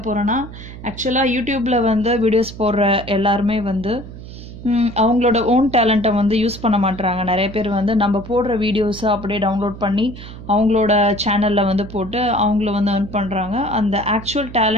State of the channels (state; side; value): noise; right; hum, 13 dB below the sound